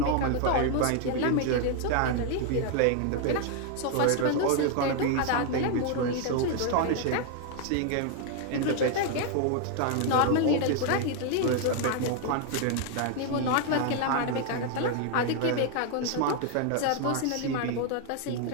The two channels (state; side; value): different; both; correlation 0.00